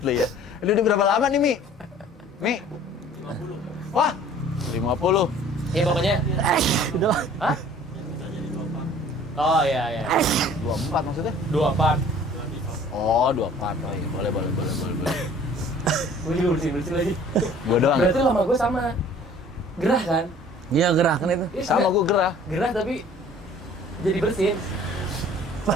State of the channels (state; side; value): normal; both; correlation 0.51